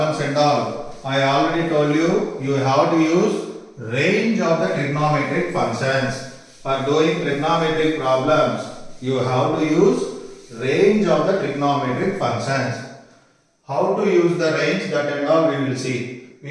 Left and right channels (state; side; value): identical; both; correlation 1.00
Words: and all, I already told you, you have to use range of the trigonometric functions. For doing trigonometric problems, you have to use range of the trigonometric functions. How to use the range, that and all we will see